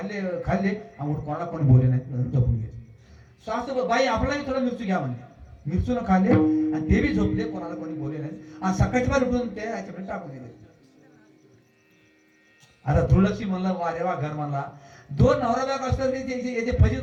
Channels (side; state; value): both; identical; correlation 1.00